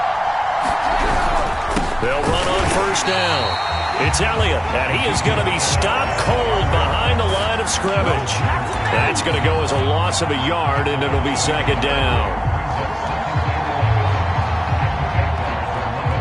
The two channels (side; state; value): both; identical; correlation 1.00